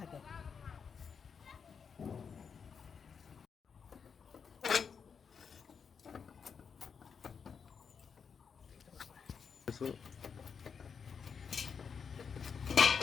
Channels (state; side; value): quieter; right; 6.3 dB